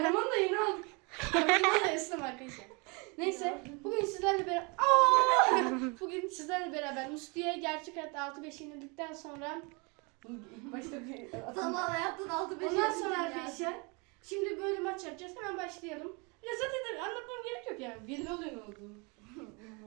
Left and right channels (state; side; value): quieter; left; 30.4 dB